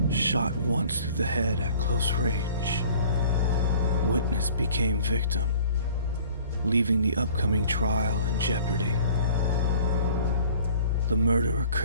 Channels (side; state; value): both; inverted; correlation -0.50